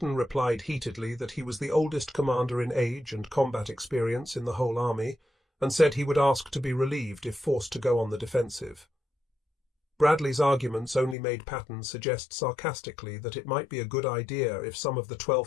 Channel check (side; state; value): right; drops out; at 11.2 s